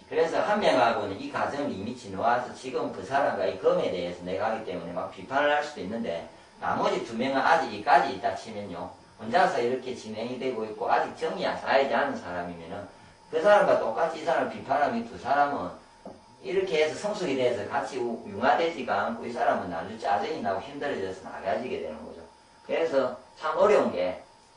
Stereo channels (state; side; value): identical; both; correlation 1.00